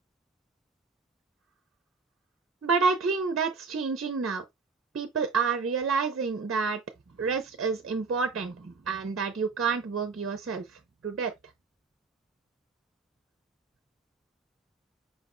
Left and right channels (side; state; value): left; quieter; 4.7 dB